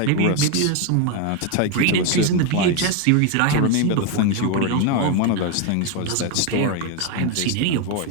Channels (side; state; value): both; different; correlation 0.01